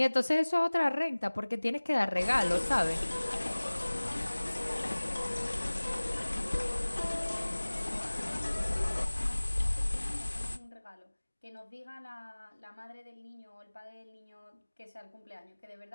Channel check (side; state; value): both; inverted; correlation -1.00